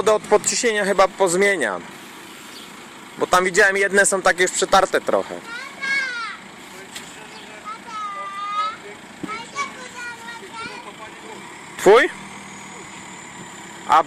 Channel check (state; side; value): identical; both; correlation 1.00